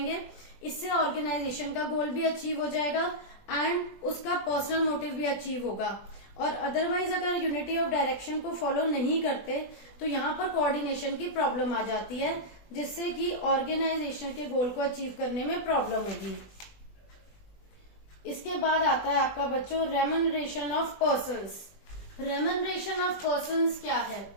इससे ऑर्गेनाइजेशन का गोल भी अचीव हो जाएगा एंड उसका पर्सनल मोटिव भी अचीव होगा। और अदरवाइज अगर यूनिटी ऑफ डायरेक्शन को फॉलो नहीं करते तो यहाँ पर कोऑर्डिनेशन की प्रॉब्लम आ जाती है, जिससे कि ऑर्गेनाइजेशन के गोल को अचीव करने में प्रॉब्लम होगी। इसके बाद आता है आपका बच्चों remuneration of persons. Remuneration of persons क्या है,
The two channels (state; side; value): late; right; 20 ms